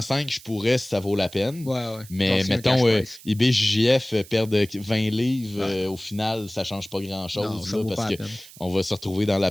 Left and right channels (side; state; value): right; noise; hiss, 20 dB below the sound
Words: je pourrais si ça vaut la peine. ouais. Mais Genre, c'est un mettons, cash price. IBJJF perdre 20 livres, Ouais. au final, ça change pas Non, grand-chose. ça Là, vaut parce pas la que peine. on va se retrouver dans